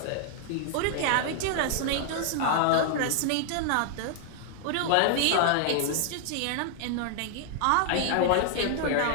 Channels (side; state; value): both; different; correlation 0.00